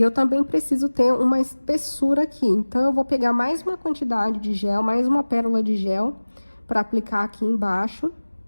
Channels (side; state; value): both; inverted; correlation -1.00